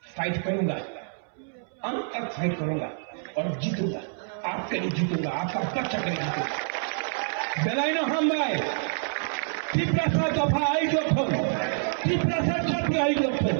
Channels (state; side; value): silent; left; 60 dB below the other